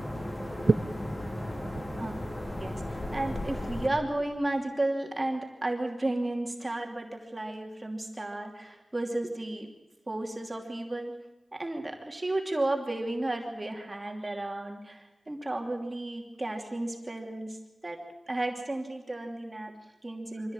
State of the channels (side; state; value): both; normal; correlation 0.98